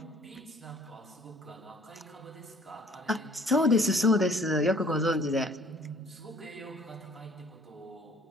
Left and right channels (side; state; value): both; normal; correlation 0.56